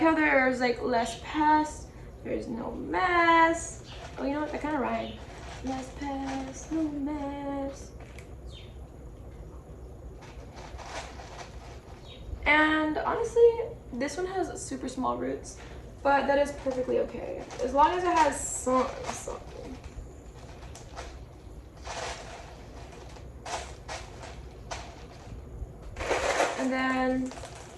there's like less pests, there's no mess. Oh, you know what, that kind of rhymed. Less pests, no mess. And honestly, this one has super small roots, but that is perfectly okay. As long as it has something. And then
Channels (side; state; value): both; identical; correlation 1.00